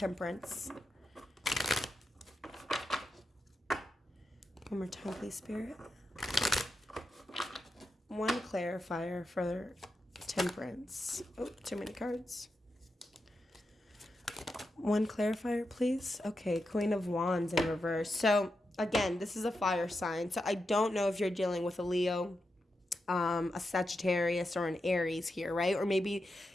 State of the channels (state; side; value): normal; both; correlation 0.87